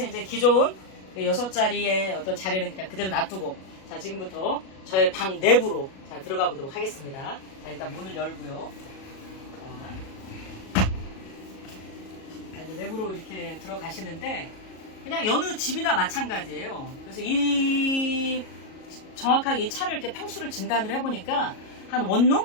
이제 기존 6자리의 어떤 자리는 그냥 그대로 놔두고, 자, 지금부터 저의 방 내부로 자, 들어가 보도록 하겠습니다. 자, 일단 문을 열고요. 자, 이제 내부로 이렇게 들어가시는데, 그냥 여느 집이나 마찬가지예요. 그래서 정확하게 이 차를 이렇게 평수를 진단을 해보니까 한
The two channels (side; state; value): right; late; 37 ms